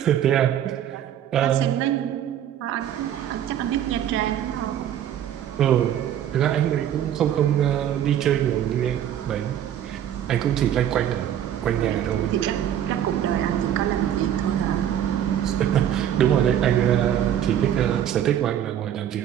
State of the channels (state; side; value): quieter; left; 10.5 dB